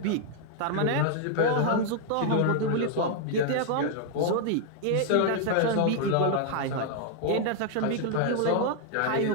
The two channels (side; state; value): both; different; correlation 0.00